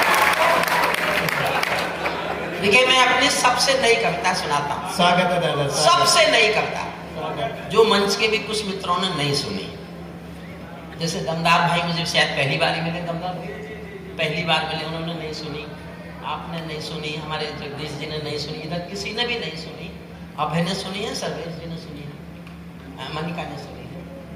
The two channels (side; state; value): both; identical; correlation 1.00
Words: देखिए मैं अपनी सबसे नई कविता सुनाता हूँ। स्वागत है दादा। सबसे नई कविता जो मंच के भी कुछ मित्रों ने नहीं सुनी। जैसे दमदार भाई मुझे शायद पहली बार ही मिले, दमदार भाई पहली बार मिले, उन्होंने नहीं सुनी, आपने नहीं सुनी, हमारे जगदीश जी ने नहीं सुनी, इधर किसी ने भी नहीं सुनी। अभय ने सुनी है, सर्वेश जी ने सुनी है, मनिका ने सुनी है,